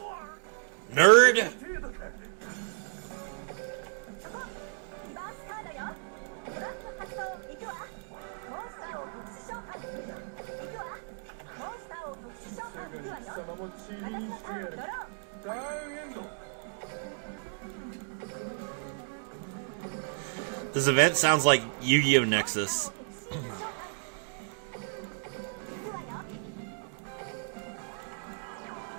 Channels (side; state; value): left; silent; digital silence